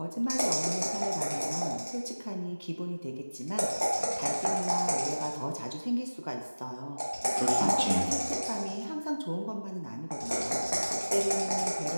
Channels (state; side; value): inverted; both; correlation -1.00